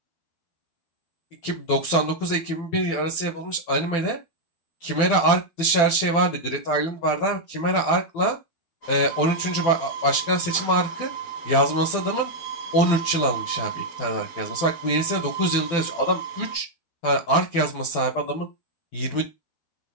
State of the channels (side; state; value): right; late; 12 ms